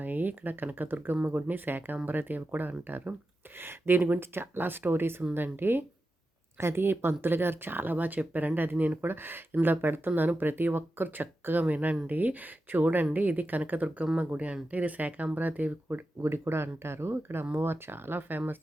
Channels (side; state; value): both; normal; correlation 0.91